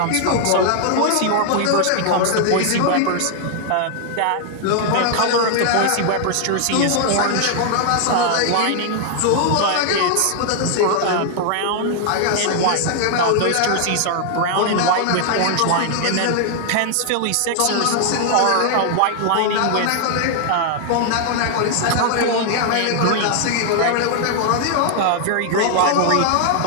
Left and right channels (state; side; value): different; both; correlation 0.00